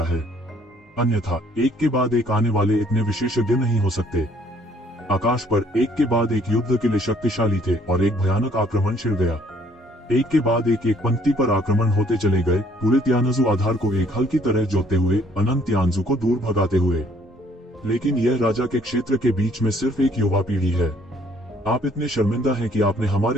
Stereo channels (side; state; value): both; normal; correlation 0.62